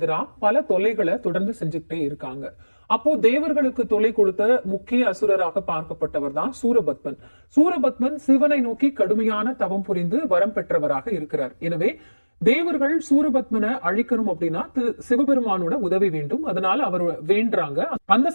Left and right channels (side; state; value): both; inverted; correlation -1.00